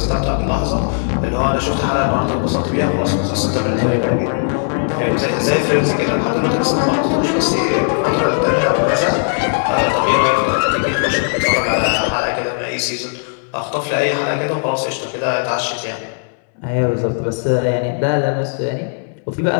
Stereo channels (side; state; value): right; silent; 68 dB below the other